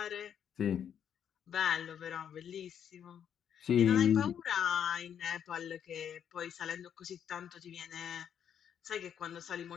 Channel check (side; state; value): right; quieter; 8.8 dB